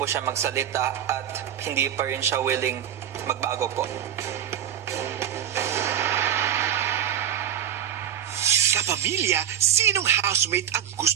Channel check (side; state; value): left; quieter; 9.8 dB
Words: siya magsalita at hindi pa rin siya willing magbago po. Kapamilya, sinong housemate ang